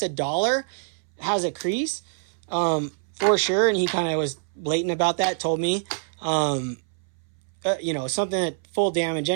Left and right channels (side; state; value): left; silent; 62 dB below the other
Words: $1 has a crease, for sure. And he kind of was blatant about that, told me, something at full damage.